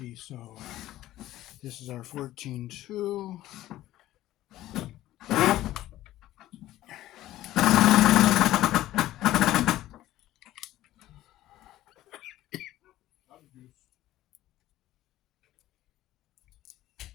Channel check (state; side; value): quieter; right; 14.8 dB